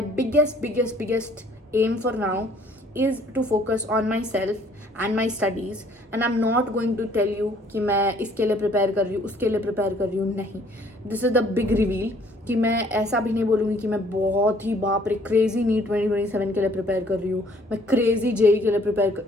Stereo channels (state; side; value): normal; both; correlation 0.60